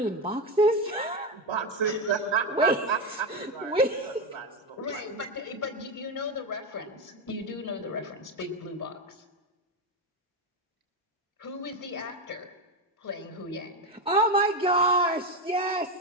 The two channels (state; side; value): normal; both; correlation 0.13